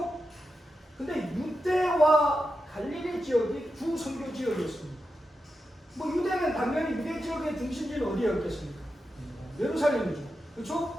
근데 유대와 갈릴리 지역이 주 선교 지역이었습니다. 뭐 유대는 당연히 유대 지역의 중심지는 어디였겠습니까? 예루살렘이죠.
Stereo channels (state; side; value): normal; both; correlation 0.89